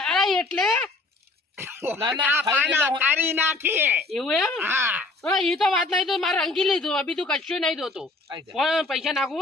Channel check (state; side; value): quieter; right; 3.2 dB